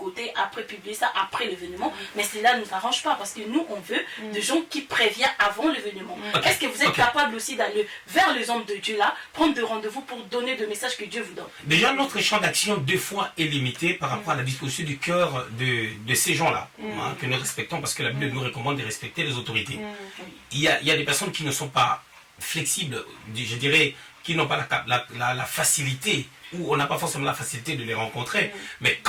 après publier ça, après l'événement, mais cela ne nous arrange pas parce que nous, on veut des gens qui préviennent avant l'événement. Est-ce que vous êtes capable aussi d'aller vers les hommes de Dieu là, prendre des rendez-vous pour donner des messages que Dieu vous donne? Déjà, notre champ d'action, des fois, est limité par rapport à la disposition du cœur de ces gens-là, que nous respectons parce que la Bible nous recommande de respecter les autorités. Il y a des personnes qui ne sont pas flexibles, je dirais, qui n'ont pas la facilité, ou on n'a pas forcément la facilité de les rencontrer. Mais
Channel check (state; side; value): identical; both; correlation 1.00